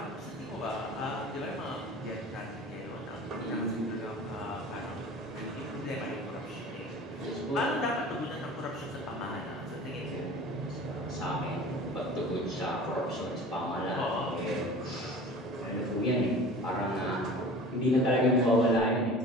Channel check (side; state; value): both; normal; correlation 0.40